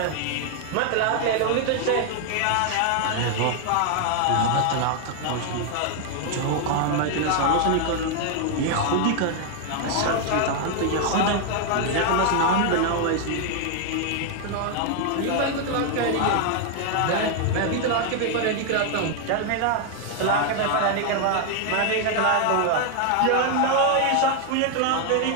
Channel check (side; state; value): both; different; correlation 0.00